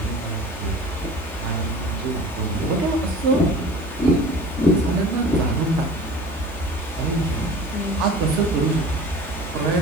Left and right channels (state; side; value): normal; both; correlation 0.41